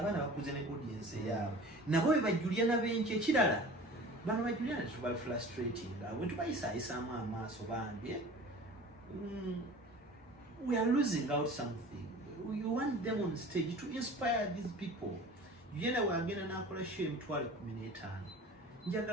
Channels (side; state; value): both; normal; correlation 0.41